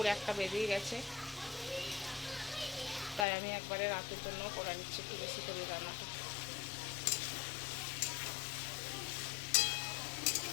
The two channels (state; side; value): drops out; right; at 3.2 s